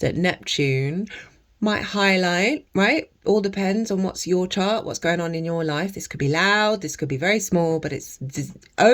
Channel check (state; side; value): identical; both; correlation 1.00